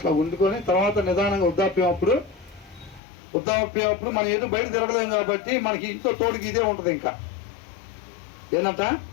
వండుకొని తర్వాత నిదానంగా వృద్ధాప్యప్పుడు మనం ఏదో బయట తిరగలేము కాబట్టి మనకి ఇంట్లో తోడుకి ఇదే ఉంటుంది. ఇంకా ఏంటంట,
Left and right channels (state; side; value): drops out; right; at 3.0 s